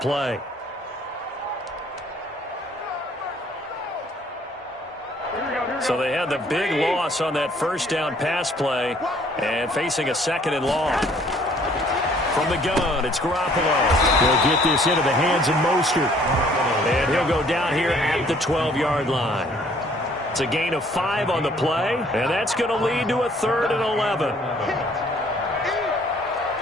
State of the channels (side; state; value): both; normal; correlation 0.60